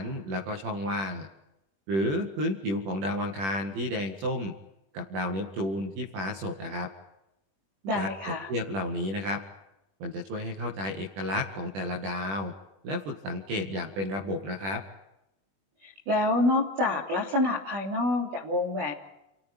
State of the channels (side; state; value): left; late; 21 ms